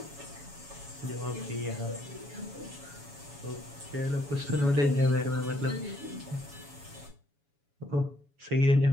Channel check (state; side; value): late; left; 7.1 ms